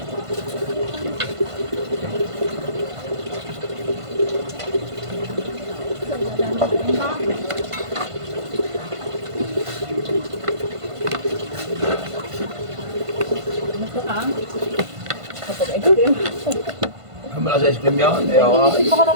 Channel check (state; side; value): late; left; 1.5 ms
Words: Mula sa ice cream yan, ayaw ka. Hindi pa ka